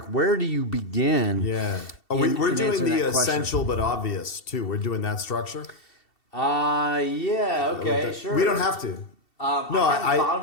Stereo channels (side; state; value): right; late; 2.7 ms